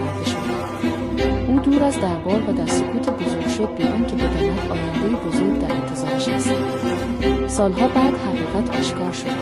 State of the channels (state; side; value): identical; both; correlation 1.00